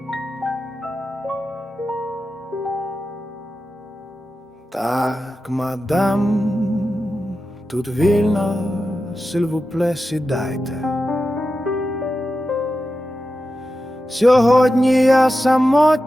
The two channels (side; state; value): both; normal; correlation 0.91